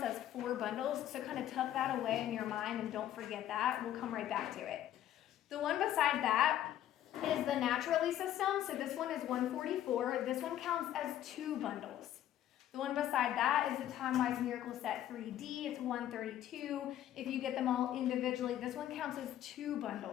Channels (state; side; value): quieter; right; 12.0 dB